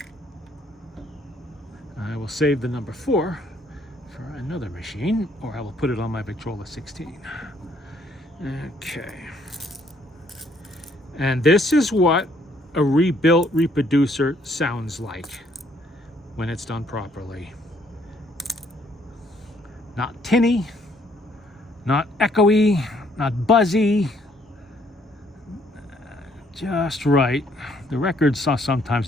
I will save the number 4 for another machine, or I will put it on my Victrola 16. Okay. And this is what a rebuilt reproducer sounds like when it's done properly. Not tinny, not echoey, not buzzy, just right. The records are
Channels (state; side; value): normal; both; correlation 0.66